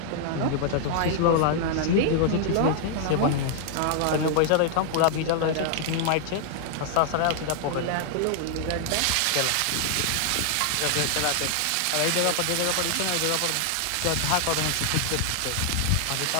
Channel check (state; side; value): different; both; correlation 0.00